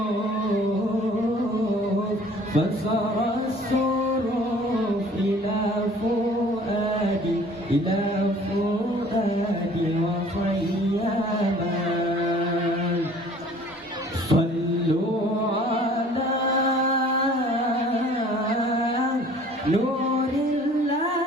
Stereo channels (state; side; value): normal; both; correlation 0.52